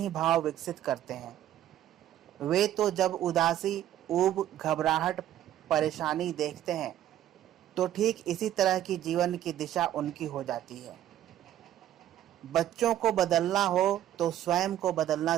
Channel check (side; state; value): left; quieter; 12.2 dB